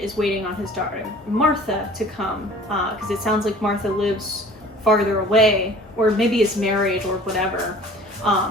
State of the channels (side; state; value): both; normal; correlation 0.47